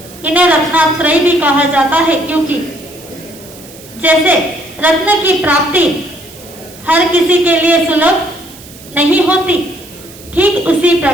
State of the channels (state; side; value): noise; right; hiss, 20 dB below the sound